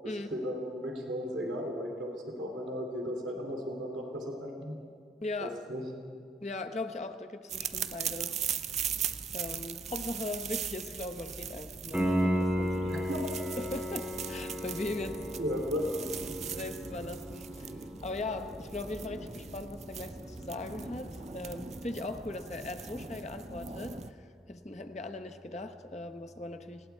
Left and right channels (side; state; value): both; normal; correlation 0.66